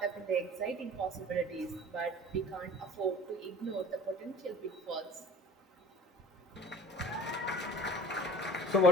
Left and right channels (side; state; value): both; normal; correlation 0.45